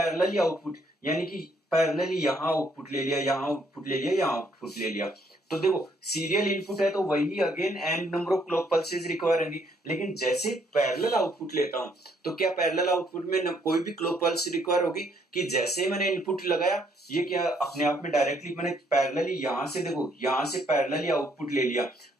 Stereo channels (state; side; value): normal; both; correlation 0.69